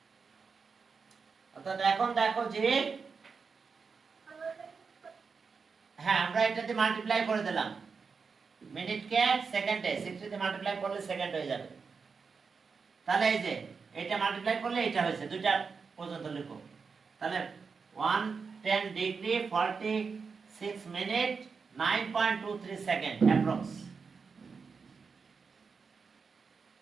অর্থাৎ এখন দেখো যে হ্যাঁ আমরা এটাতে মাল্টিপ্লাই করে দিলাম, মিনিটকে সেকেন্ডে 60 দিয়ে মাল্টিপ্লাই করলে সেকেন্ড হয়ে যাবে। তাহলে এই যে এটা মাল্টিপ্লাই করলে এটা হয়েছে, দুইটা পর্যন্ত লিখো। তাহলে 110 degree 46 minute 9.23 second approx.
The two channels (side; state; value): left; quieter; 5.2 dB